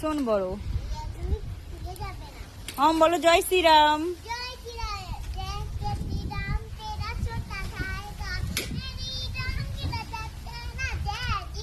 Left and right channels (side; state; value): both; identical; correlation 1.00